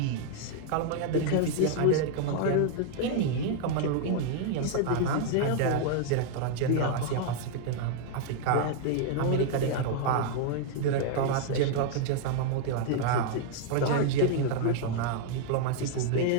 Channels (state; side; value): different; both; correlation 0.00